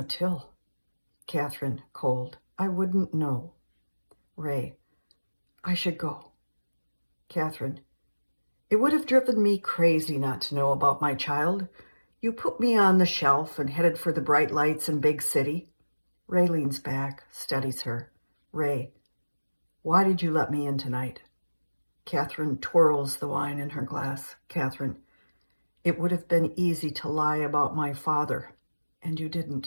Till. Catherine, cold, I wouldn't know. Ray, I should go. Catherine, it would have driven me crazy not to know about my child. You put me on the shelf and headed for the bright lights in big city. Ray leans back, studies her. Ray, why did you let me in tonight? Catherine twirls the wine in her glass. Catherine, it would have been easy to lie about my father, and you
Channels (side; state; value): both; inverted; correlation -1.00